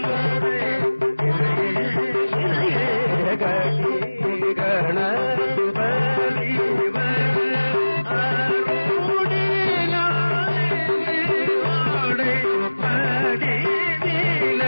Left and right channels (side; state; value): both; inverted; correlation -1.00